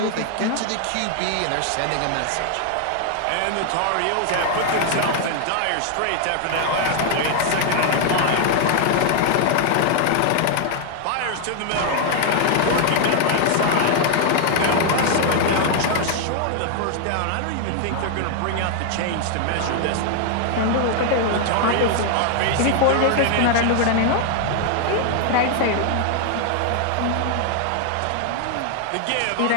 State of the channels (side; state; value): both; different; correlation 0.00